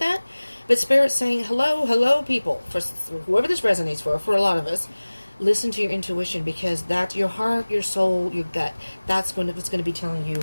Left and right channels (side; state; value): both; inverted; correlation -1.00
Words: but Spirit's saying, hello, people, for whoever this resonates for a lot of us, listen to your intuition, because that's your heart, your soul, your gut. That's what's going to be telling you